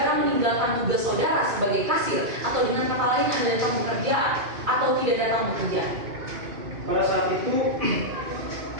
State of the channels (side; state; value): left; late; 2.5 ms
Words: meninggalkan tugas saudara sebagai kasir atau dengan kata lain Anda datang bekerja atau tidak datang bekerja? Pada saat itu